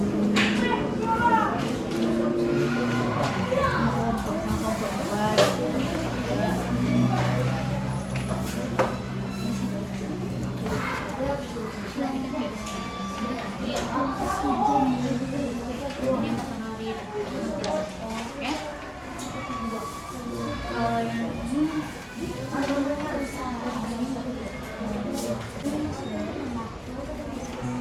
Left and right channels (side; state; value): both; identical; correlation 1.00